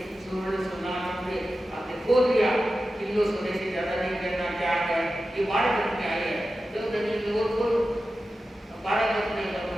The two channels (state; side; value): normal; both; correlation 0.93